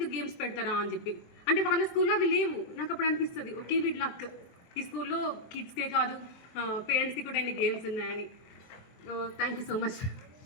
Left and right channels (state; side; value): late; right; 23 ms